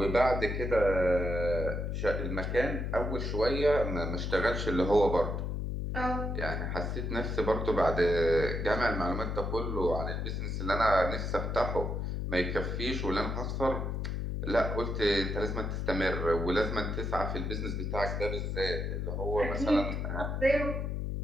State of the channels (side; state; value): left; noise; hum, 2 dB below the sound